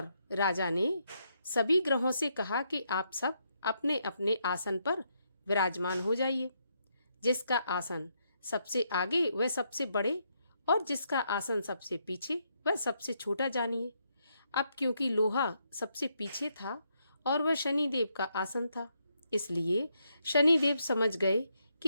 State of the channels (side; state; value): both; inverted; correlation -0.78